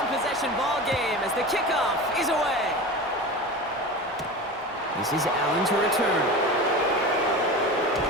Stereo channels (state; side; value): normal; both; correlation 0.30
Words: ball game as the kickoff is away. This is Allen to return.